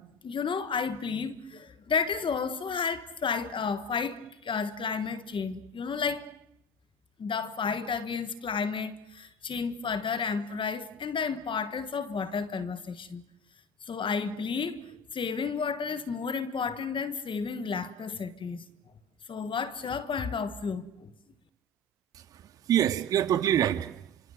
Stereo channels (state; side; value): normal; both; correlation 0.29